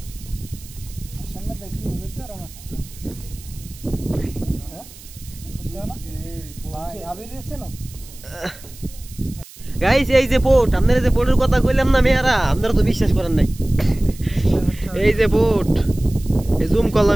আসামে দেখি হবে তো আমার ভাই আবির এসে না গাইস। এই যে বোট, আপনারা যে বোটের কথা কইলাম না মেয়ারা, আপনারা তো বিশ্বাস করেন নাই। এই যে বোট, এই জুম করলাম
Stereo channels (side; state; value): right; noise; hiss, 19 dB below the sound